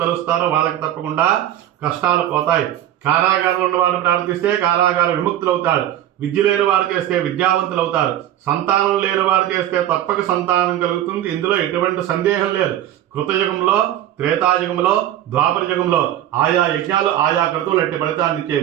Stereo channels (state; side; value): quieter; left; 12.2 dB